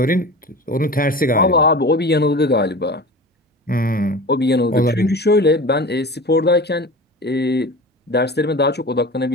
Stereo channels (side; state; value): both; normal; correlation 0.34